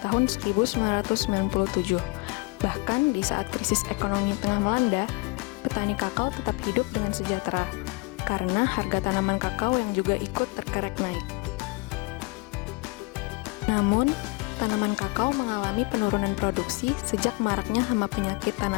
tahun 1997. Bahkan di saat krisis ekonomi tengah melanda, petani kakao tetap hidup dengan sejahtera karena harga tanaman kakao yang juga ikut terkerek naik. Namun, tanaman kakao mengalami penurunan produksi sejak maraknya hama penyakit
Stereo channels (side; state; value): right; quieter; 26.7 dB